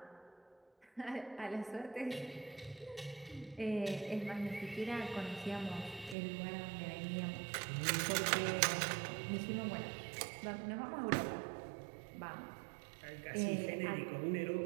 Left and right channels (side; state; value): left; drops out; at 6.2 s